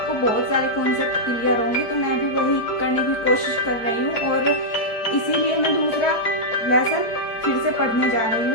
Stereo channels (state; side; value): late; right; 4.5 ms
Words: बहुत सारे कॉन्सेप्ट क्लियर होंगे। तो मैं भी वही करने की कोशिश कर रही हूँ और इसीलिए मैं दूसरा लेसन फिर से पढ़ने जा रही